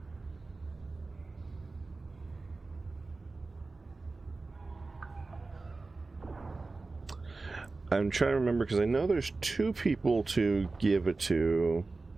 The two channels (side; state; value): left; quieter; 3.6 dB